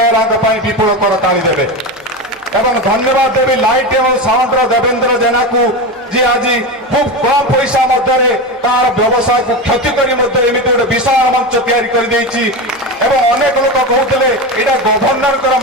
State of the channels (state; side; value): normal; both; correlation 0.20